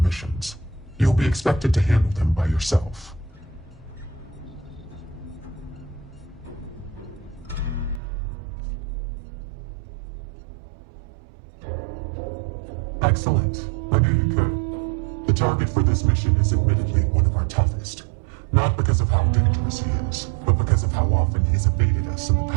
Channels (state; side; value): drops out; left; at 8.0 s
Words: You'll be expected to handle them by yourself. Excellent. I knew you could. The target for this mission is admittedly one of our toughest. Not because of how dangerous he is, but because of how often he's evaded us in the